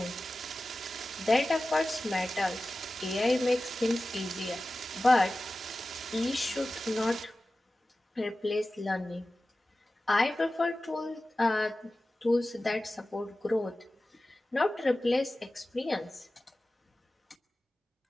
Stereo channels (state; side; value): normal; both; correlation 0.95